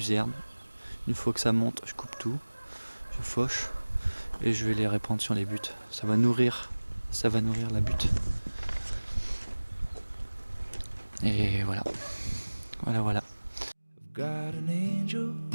Une fois que ça monte, je coupe tout, je fauche et je vais les répandre sur les buttes. Ça va nourrir la butte. Et voilà. Voilà. Got an angel.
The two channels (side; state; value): both; inverted; correlation -1.00